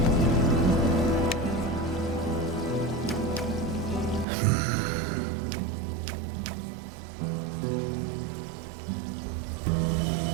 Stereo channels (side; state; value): left; drops out; at 4.2 s